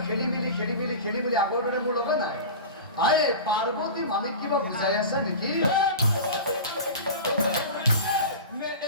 খেলি মেলি আগৰ দৰে মোৰ লগত নাই আৰে পাৰ্বতী মামীক কিবা বুজাই আছা নেকি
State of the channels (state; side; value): inverted; both; correlation -0.32